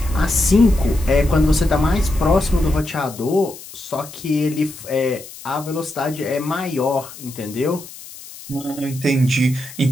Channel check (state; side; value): noise; left; hiss, 16 dB below the sound